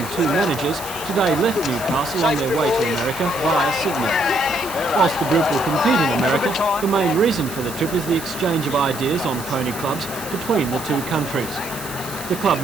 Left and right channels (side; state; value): right; noise; hiss, 12 dB below the sound